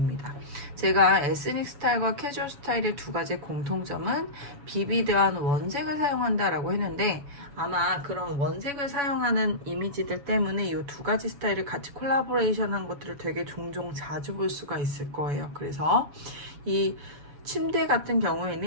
제가 에스닉 스타일과 캐주얼 스타일의 두 가지 공통점은 비비드한 원색을 사용한다라고 했는데, 아마 그런 원색을 사용하는 이미지들 때문에 이 두 가지 스타일을 같이 콜라보레이션한 것들을 되게 종종 자주 볼 수가 있을 거예요. 그래서 이 침대 같은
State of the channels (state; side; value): late; left; 7.1 ms